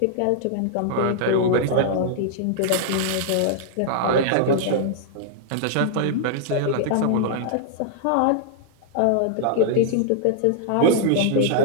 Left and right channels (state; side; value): different; both; correlation -0.01